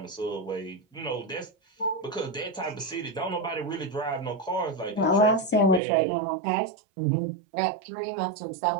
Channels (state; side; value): drops out; left; at 5.8 s